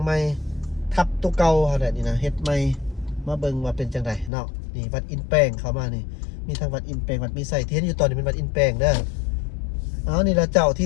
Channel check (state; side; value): drops out; right; at 4.3 s